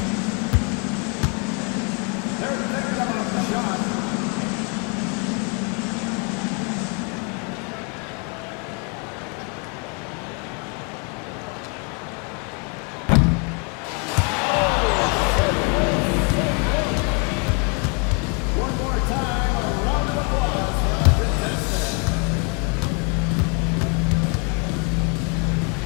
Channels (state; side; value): quieter; right; 35.4 dB